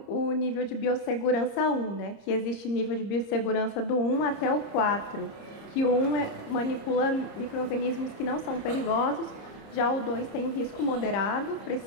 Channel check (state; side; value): late; right; 30 ms